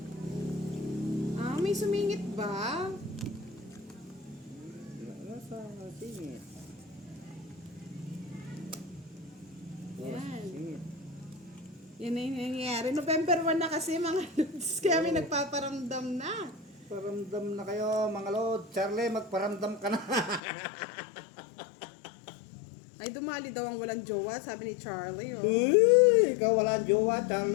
Ah, may sumingit ba? Nasa singit. Yan. Singit. Yan na yung nangyayari. November 1 na kasi mga lods. Kaya may nagpaparamdam na. Paramdam na kayo, mga lord. Charlie, magparamdam ka na. Ay, dumali daw ang walang jowa, sabi ni Charlie. Oh. Uy, ikaw wala ang jowa,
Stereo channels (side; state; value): right; drops out; at 20.4 s